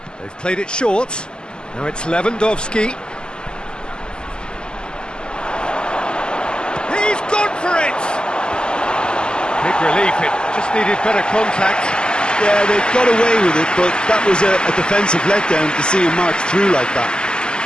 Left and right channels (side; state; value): right; late; 0.047 ms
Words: They've played it short. Now it's Lewandowski. He's gone for it! Big relief, it just needed better contact. Yeah, they got away with it, but that was a defensive letdown to see him march through like that.